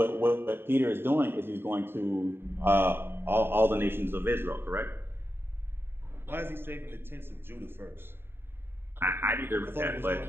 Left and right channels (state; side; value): late; left; 0.11 ms